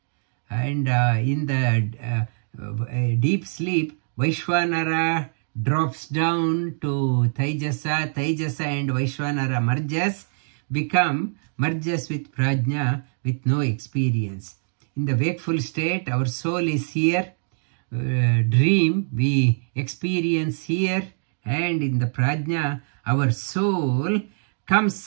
And in the deep sleep, Vaishwanara drops down to Taijasa. Taijasa and Vaishwanara merges with Prajna with no experience. In the wakeful state, our soul is here. Dream, we experience here. And in the Prajna, our soul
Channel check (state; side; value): silent; left; digital silence